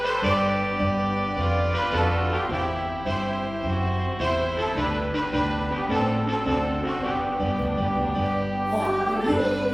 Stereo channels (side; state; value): left; noise; hum, 14 dB below the sound